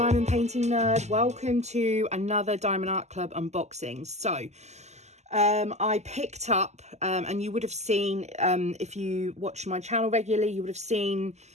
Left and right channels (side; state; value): left; late; 0.33 ms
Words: Diamond Painting Nerd. Welcome to another Diamond Art Club unboxing. So I picked up, and you would have seen, if you watch my channel regularly, you would have seen